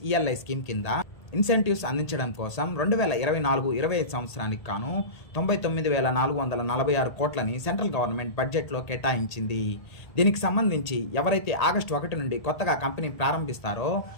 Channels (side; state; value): right; late; 1.7 ms